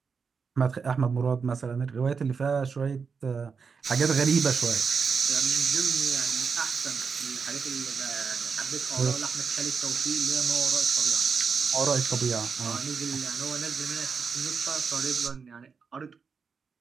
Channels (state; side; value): quieter; left; 5.6 dB